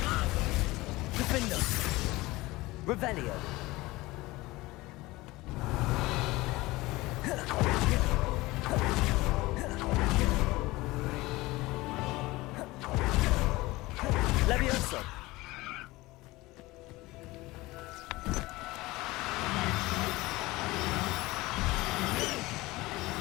Defendo. Revelio. Levioso.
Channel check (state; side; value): quieter; right; 20.3 dB